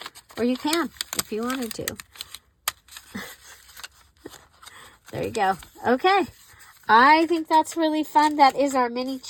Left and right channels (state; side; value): identical; both; correlation 1.00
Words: Or you can, if you wanted to. There you go. Okay. I think that's really fun. That is our mini